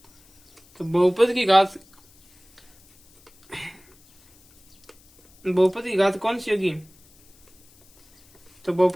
तो बहुपद की घात, बहुपद की घात कौन सी होगी, तो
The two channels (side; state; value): left; noise; hiss, 30 dB below the sound